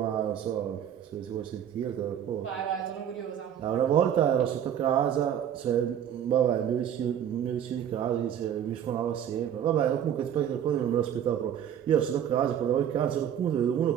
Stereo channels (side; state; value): left; quieter; 9.6 dB